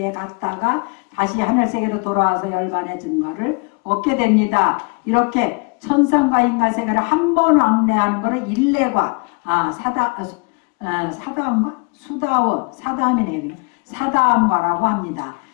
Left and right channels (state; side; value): quieter; right; 34.1 dB